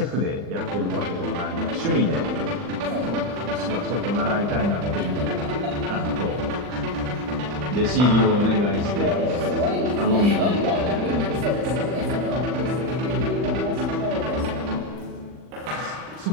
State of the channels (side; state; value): left; late; 40 ms